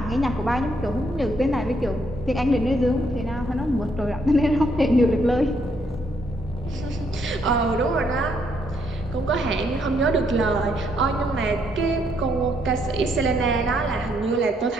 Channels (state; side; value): normal; both; correlation 0.72